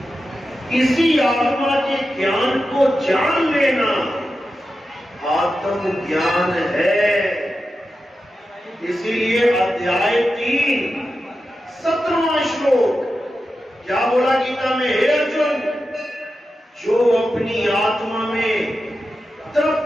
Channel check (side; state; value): both; normal; correlation 0.91